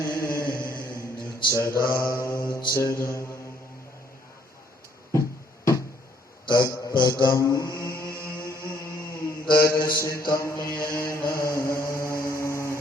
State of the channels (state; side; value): normal; both; correlation 0.66